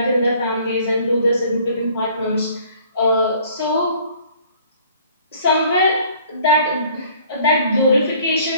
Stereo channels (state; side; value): inverted; both; correlation -0.56